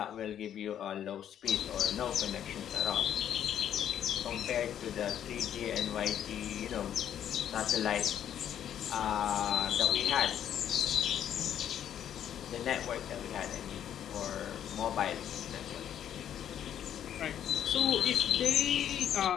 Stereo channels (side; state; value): right; quieter; 10.0 dB